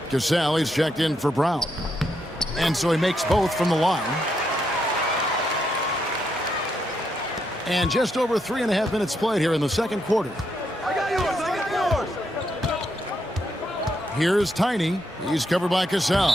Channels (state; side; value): normal; both; correlation 0.79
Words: Cassell is checked in for Brown. And so he makes both from the line. And just over 3.5 minutes played here in the second quarter. I got yours. Here's Tiny. He's covered by Cassell.